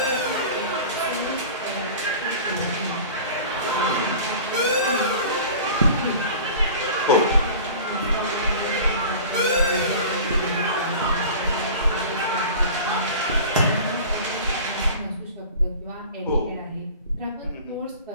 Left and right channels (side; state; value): both; inverted; correlation -0.39